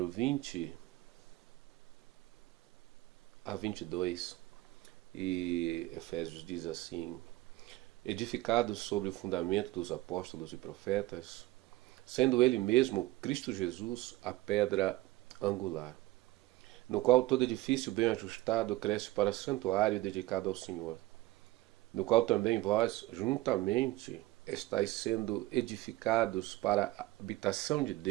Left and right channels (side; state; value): left; quieter; 18.4 dB